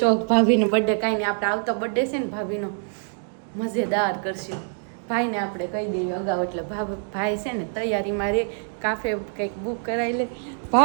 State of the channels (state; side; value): silent; left; 62 dB below the other